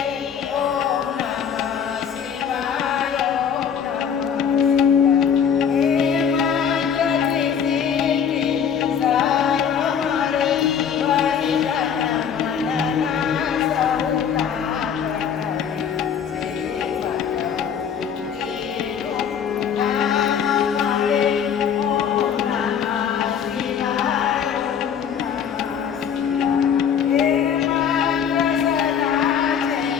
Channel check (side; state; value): right; quieter; 7.7 dB